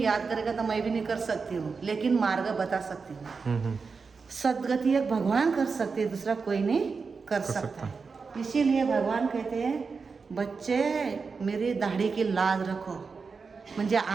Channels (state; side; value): quieter; left; 4.9 dB